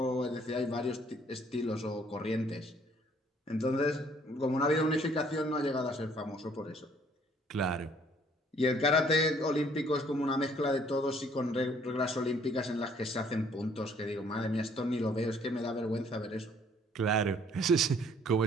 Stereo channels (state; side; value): normal; both; correlation 0.61